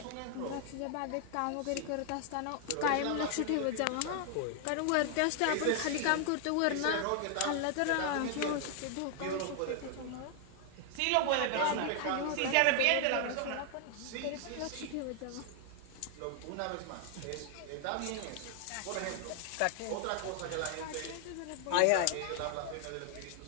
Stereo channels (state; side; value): different; both; correlation 0.00